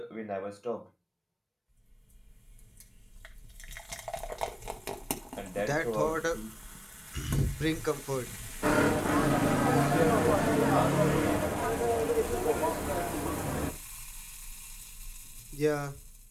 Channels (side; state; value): both; identical; correlation 1.00